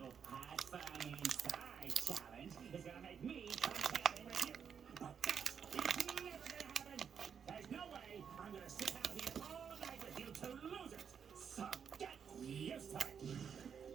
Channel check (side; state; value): left; quieter; 7.3 dB